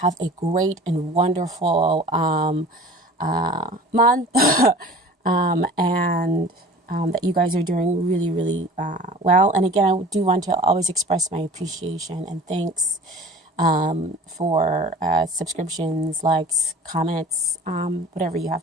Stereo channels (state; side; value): normal; both; correlation 0.43